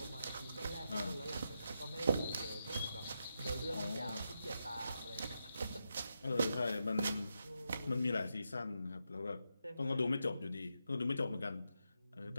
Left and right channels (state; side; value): inverted; both; correlation -0.85